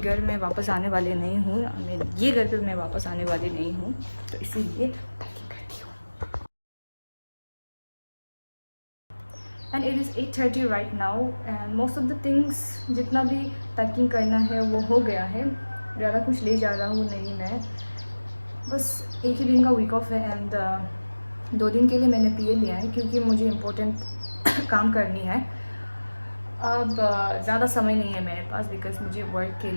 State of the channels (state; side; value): inverted; both; correlation -1.00